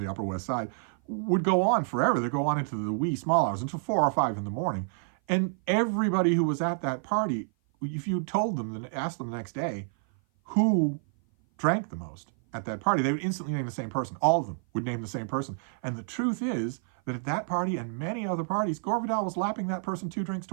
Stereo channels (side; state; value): left; silent; 56 dB below the other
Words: Upper West Side, would go on forever. They'd go on into the wee small hours, until 4 or 5 in the morning. And everybody who was at that party, if you told them, then asked them the next day who drank the most at that party, they would instantly name the same person. All of them would name the same person. And the truth is that at that party and many other parties, Gore Vidal was lapping that person 2 drinks to